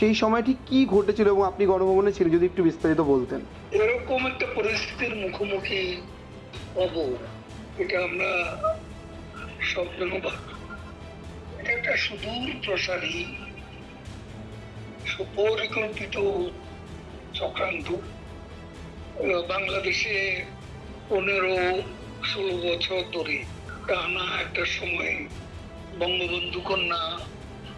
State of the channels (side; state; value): both; identical; correlation 1.00